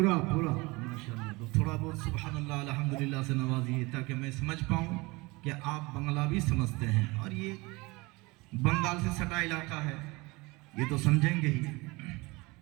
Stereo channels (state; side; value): quieter; left; 24.2 dB